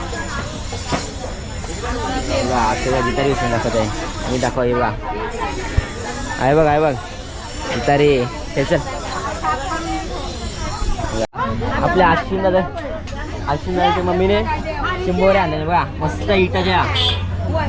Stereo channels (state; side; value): identical; both; correlation 1.00